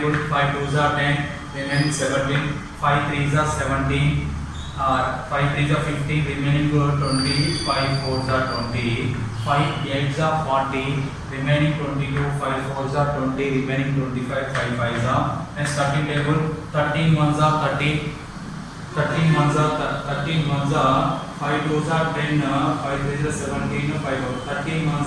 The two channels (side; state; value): both; identical; correlation 1.00